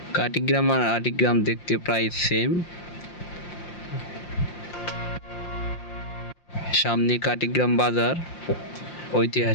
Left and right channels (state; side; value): late; right; 5.7 ms